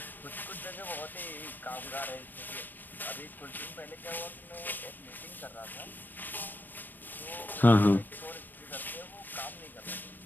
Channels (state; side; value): late; right; 0.091 ms